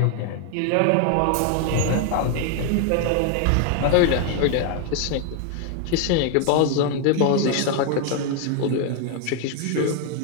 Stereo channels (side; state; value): both; different; correlation 0.01